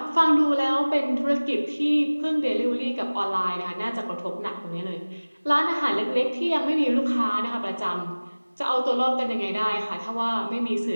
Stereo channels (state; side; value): inverted; both; correlation -1.00